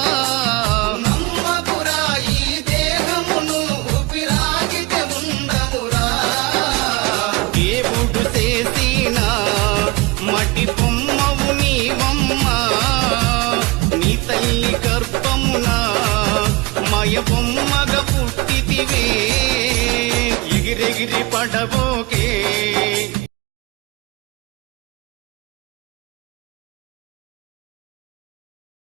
నమ్మకురా ఈ దేహమును ఊపిరాగితే ఉండవురా దేవుడు చేసిన మటి బొమ్మవు నీవమ్మ నీ తల్లి గర్భమున మయ బొమ్మగా పుట్టితివే ఎగిరెగిరి పడబోకే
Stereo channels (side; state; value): left; quieter; 23.8 dB